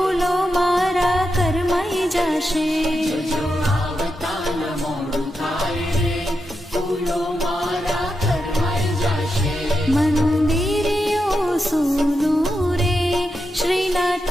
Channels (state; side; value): normal; both; correlation 0.87